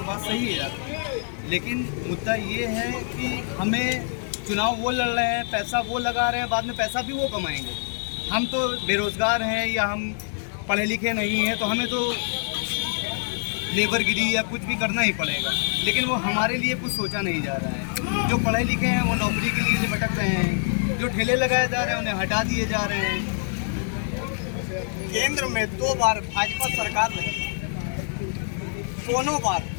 बात सही है आपकी, लेकिन मुद्दा ये है कि हमें चुनाव वो लड़ रहे हैं, पैसा वो लगा रहे हैं, बाद में पैसा भी वो कमाएंगे। हम तो बेरोज़गार हैं या हम पढ़े लिखे नहीं हैं, तो हमें तो लेबरगिरी या कुछ भी करना ही पड़ेगा, लेकिन वो हमारे लिए कुछ सोचा नहीं जा रहा है। जो पढ़े लिखे हैं वो नौकरी के लिए भटक रहे हैं, जो ठेले लगाए जा रहे हैं उन्हें हटा दिए जा रहे हैं। केंद्र में 2 बार भाजपा सरकार रही, दोनों बार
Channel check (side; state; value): right; silent; 60 dB below the other